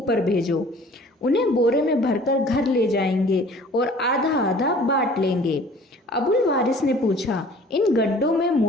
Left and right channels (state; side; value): normal; both; correlation 0.50